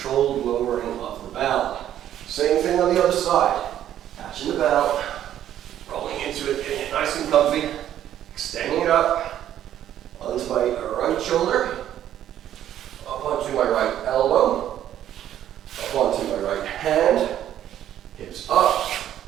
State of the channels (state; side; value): quieter; left; 11.3 dB